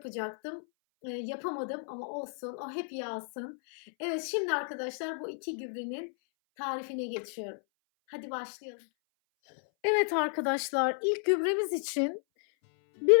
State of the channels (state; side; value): silent; right; 56 dB below the other